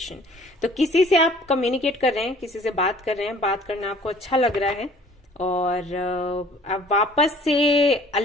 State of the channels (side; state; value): both; normal; correlation 0.53